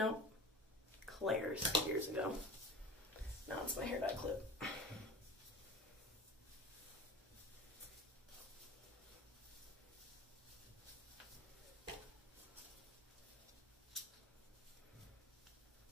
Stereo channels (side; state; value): both; normal; correlation 0.35